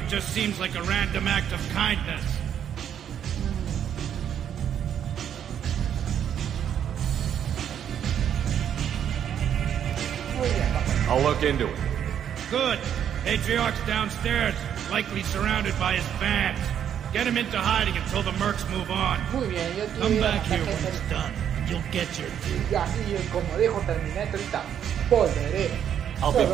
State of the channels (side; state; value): left; quieter; 9.2 dB